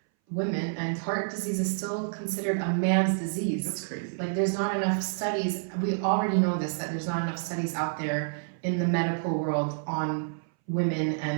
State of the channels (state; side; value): silent; left; 59 dB below the other